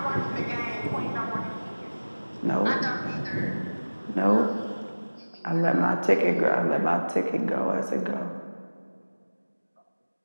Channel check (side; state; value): both; inverted; correlation -1.00